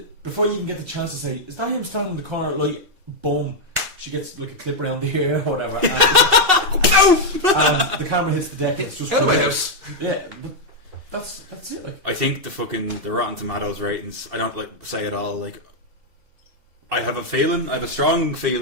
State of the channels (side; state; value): left; late; 2.7 ms